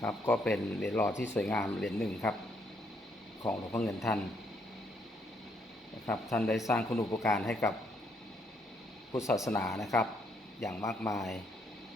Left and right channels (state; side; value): normal; both; correlation 0.72